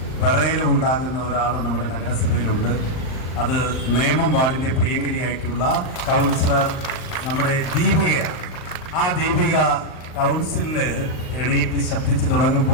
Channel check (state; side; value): late; right; 39 ms